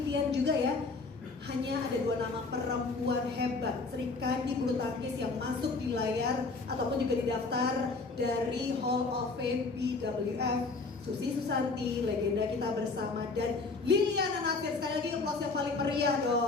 juga ya. Hanya ada 2 nama perempuan hebat Sri Kandi bulu tangkis yang masuk di layar ataupun juga di daftar dari Hall of Fame BWF. Susi Susanti, legenda kita bersama, dan Liliana Natsir. Sekali lagi aplaus yang paling meriah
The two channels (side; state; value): right; quieter; 3.9 dB